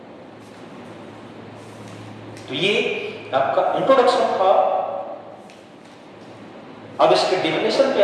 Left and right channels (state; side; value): identical; both; correlation 1.00